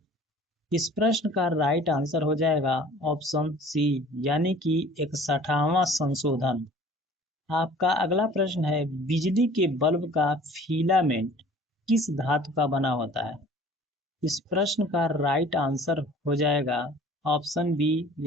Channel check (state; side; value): normal; both; correlation 0.48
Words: इस प्रश्न का राइट आंसर हो जाएगा ऑप्शन सी यानी कि 61वां संशोधन। आपका अगला प्रश्न है, बिजली के बल्ब का फिलामेंट किस धातु का बना होता है? इस प्रश्न का राइट आंसर हो जाएगा ऑप्शन बी